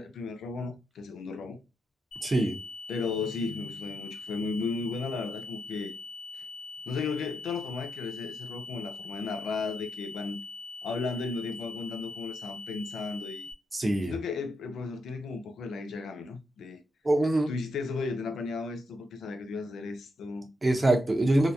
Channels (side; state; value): both; normal; correlation 0.82